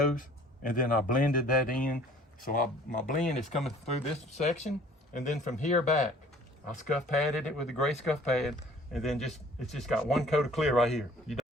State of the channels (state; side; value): normal; both; correlation 0.53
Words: and then I blended that in. So my blend is coming through this section, and then from here back, I scuff padded it with a gray scuff pad, and then it's just got 1 coat of clear right here. You